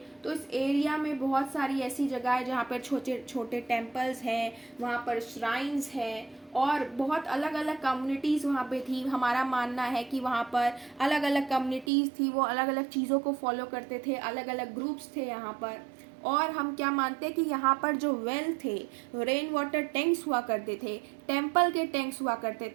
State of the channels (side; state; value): left; drops out; at 11.9 s